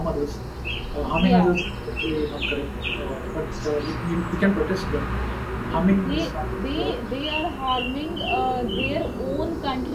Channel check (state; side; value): identical; both; correlation 1.00